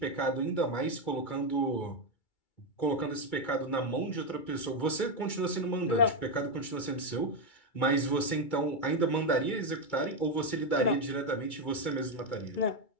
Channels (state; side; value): late; right; 2.3 ms